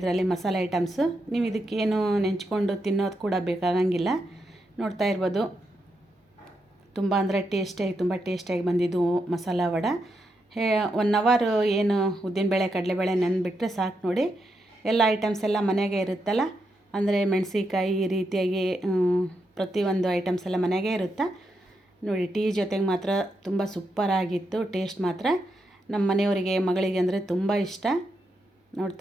ಮಸಾಲೆ ಐಟಮ್ಸು. ನೀವು ಇದಕ್ಕೇನು ನೆಂಚ್ಕೊಂಡು ತಿನ್ನೋದು ಕೂಡ ಬೇಕಾಗಂಗಿಲ್ಲ. ನೋಡ್ತಾ ಇರ್ಬೋದು, ತುಂಬ ಅಂದರೆ ತುಂಬ ಟೇಸ್ಟಿಯಾಗಿ ಬಂದಿದ್ದು ಮಸಾಲ ವಡೆ. 1 ಅವರ್ ಏನು ಉದ್ದಿನಬೇಳೆ, ಕಡಲೆಬೇಳೆ ನೆನೆಬಿಟ್ರೆ ಸಾಕು ನೋಡಿ. ಎಲ್ಲ ಐಟಮ್ಸ್ ಎಲ್ಲ ಮನೆಯಾಗೆ ಇರುತ್ತಲ್ಲ, ಅಂದರೆ ಮೆಣಸಿಕಾಯಿ ಈ ರೀತಿಯಾಗಿ ಪ್ರತಿಯೊಂದು ಐಟಮ್ಸ್ ಎಲ್ಲ ಮನೆಯಾಗೆ ಇರುತ್ತೆ ನೋಡಿ. ಟೀ ಜೊತೆಗೆ ಮಾತ್ರ ತುಂಬ ಸೂಪರಾಗಿತ್ತು. ಟೇಸ್ಟ್ ಮಾತ್ರ ನಮ್ಮ ಮನೆಯವರಿಗೆ, ಮಗಳಿಗೆ ಅಂದರೆ ತುಂಬ ಇಷ್ಟ.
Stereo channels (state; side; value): normal; both; correlation 0.83